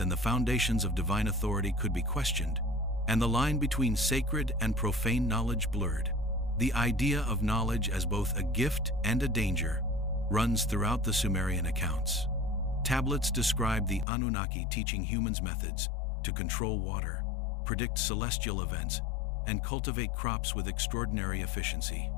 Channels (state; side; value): drops out; right; at 14.1 s